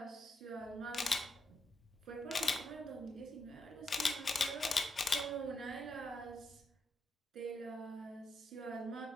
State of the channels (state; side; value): normal; both; correlation 0.81